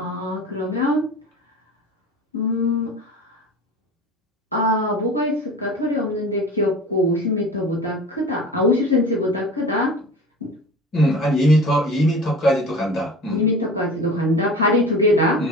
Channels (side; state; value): both; normal; correlation 0.37